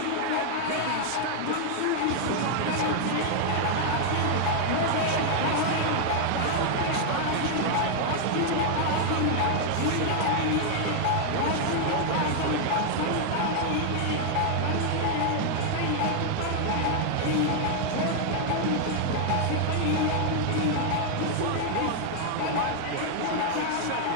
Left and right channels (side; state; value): both; different; correlation 0.00